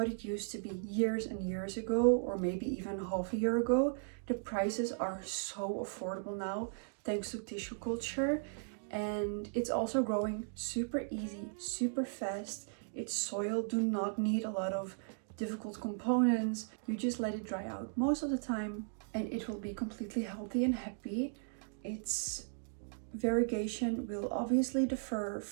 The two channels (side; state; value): left; silent; digital silence